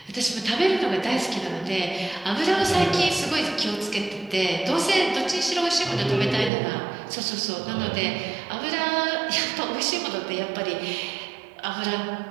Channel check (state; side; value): drops out; left; at 6.5 s